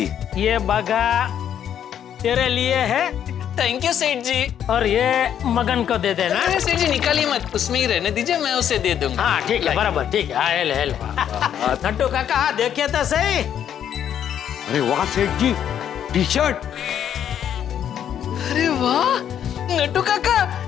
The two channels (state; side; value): quieter; right; 9.6 dB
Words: ये बगा तेरे लिए है थैंक यू सेठ जी। और ये मगन को दे देना। अरे सेठ जी निकालिए मत, उसमें ही रहने दीजिए, मैं उसे दे दूंगा। हाँ ठीक है, बराबर, ठीक है। हेल हेल नट्टू काका, देखिए तो सही। अरे वाह सेठ जी, टी शर्ट। अरे वाह नट्टू